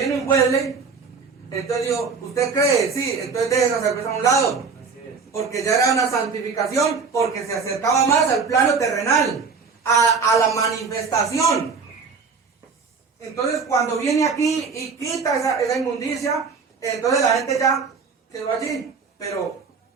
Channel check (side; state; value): left; quieter; 5.1 dB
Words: un Wesley, entonces dijo, ¿usted cree? Sí, entonces deje esa cerveza a un lado. Así es. Porque ya era una santificación, porque se acercaba más al plano terrenal, a la manifestación. Entonces cuando viene aquí y quita esa inmundicia, entonces la gente ya quedó allí, pero